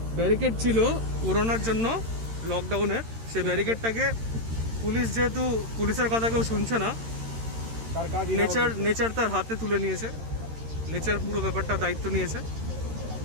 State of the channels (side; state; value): left; late; 13 ms